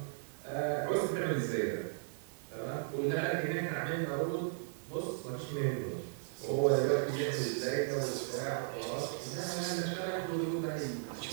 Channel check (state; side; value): silent; left; digital silence